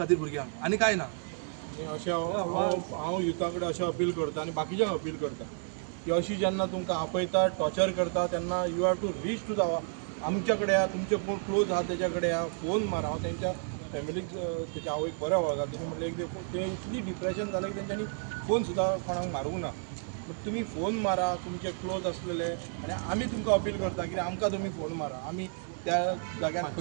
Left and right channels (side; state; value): left; silent; 56 dB below the other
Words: भुरग्यांक आनी कांय ना. अशें हांव युथा कडेन अशें अपील करता आनी बाकीच्यांक अपील करता की अशी जेन्ना तुमकां आपयता, टॉर्चर करता तेन्ना you have to reach to the आमच्या कडेन या, तुमचे कोण क्लोज आहा तेच्या कडेन या, फोन मारा. हांव तेंच्या फॅमिलीक तेच्या आवयक बरें वळखता. तेणी म्हटलें ते इतली डिप्रेशन जालें की तेंच्यांनी फोन सुद्दां कोणाक मारूंक ना. बट तुमी फोन मारा तुमचे क्लोज आसलेले आनी आमी तुमकां अपील करता की आमकां तुमी फोन मारा. आमी त्या जाग्यार